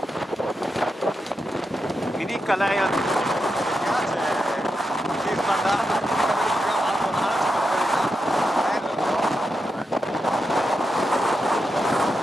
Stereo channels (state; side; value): normal; both; correlation 0.87